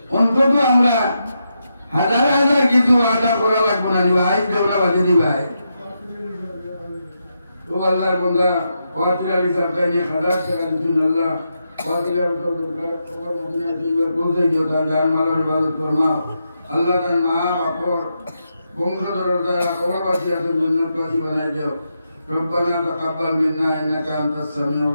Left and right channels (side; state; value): both; inverted; correlation -0.84